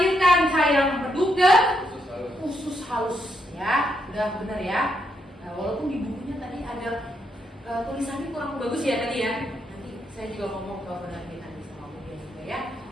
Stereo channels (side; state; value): both; normal; correlation 0.79